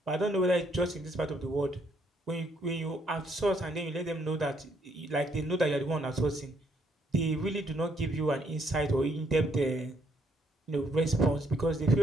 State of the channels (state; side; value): normal; both; correlation 0.70